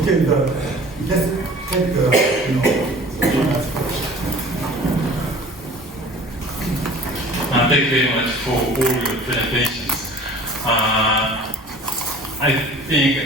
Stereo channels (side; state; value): both; normal; correlation 0.45